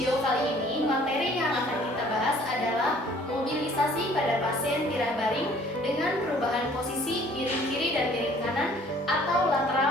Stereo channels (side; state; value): both; normal; correlation 0.56